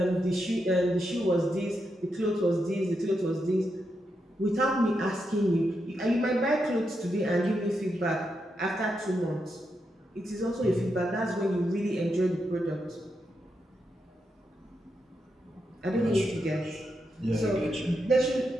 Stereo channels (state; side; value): normal; both; correlation 0.84